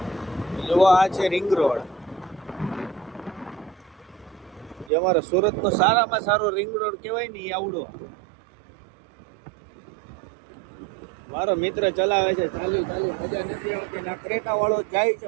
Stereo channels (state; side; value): drops out; left; at 4.9 s